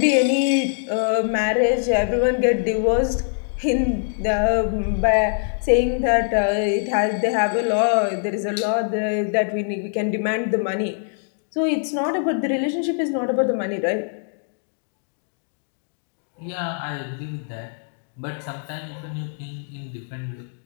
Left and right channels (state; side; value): silent; right; digital silence